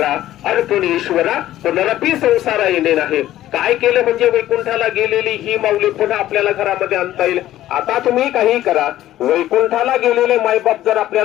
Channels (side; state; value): right; quieter; 13.7 dB